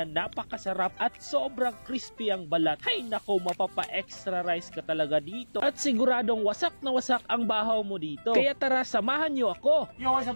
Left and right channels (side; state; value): both; inverted; correlation -1.00